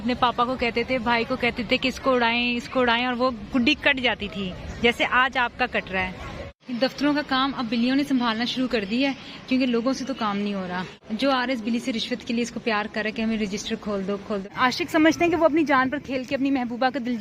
पापा को कहते थे, भाई को कहते थे कि इसको उड़ाएं और वो गुड्डी कट जाती थी, जैसे आज आपका कट रहा है। दफ्तरों का काम अब बिल्लियों ने संभालना शुरू कर दिया है, क्योंकि लोगों से तो काम नहीं हो रहा। जो आ रहे इस बिल्ली से रिश्वत के लिए इसको प्यार कर रहा है कि हमें रजिस्टर खोल दो। आशिक समझते हैं कि वो अपनी जान पर खेल के अपनी महबूबा का दिल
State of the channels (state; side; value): identical; both; correlation 1.00